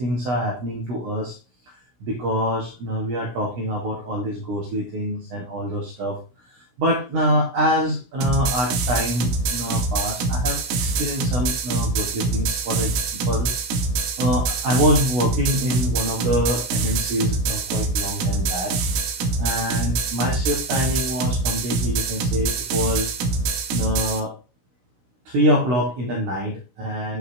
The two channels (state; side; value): late; left; 17 ms